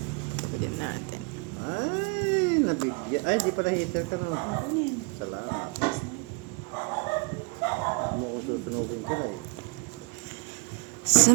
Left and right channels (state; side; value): quieter; left; 31.2 dB